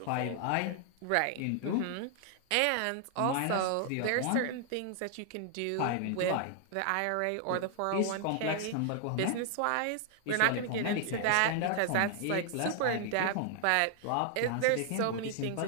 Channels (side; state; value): both; different; correlation 0.00